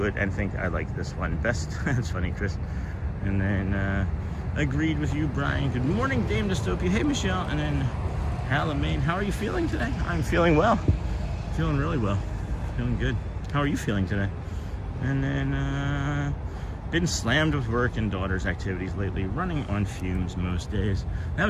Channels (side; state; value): both; identical; correlation 1.00